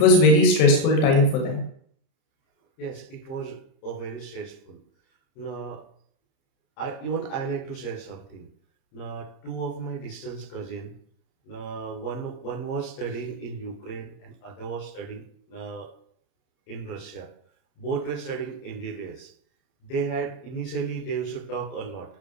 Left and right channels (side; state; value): right; late; 31 ms